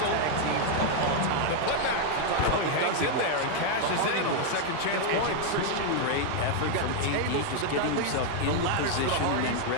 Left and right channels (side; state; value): both; different; correlation 0.00